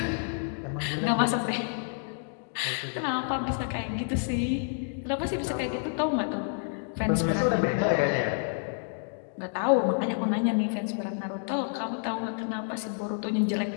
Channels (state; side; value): silent; right; digital silence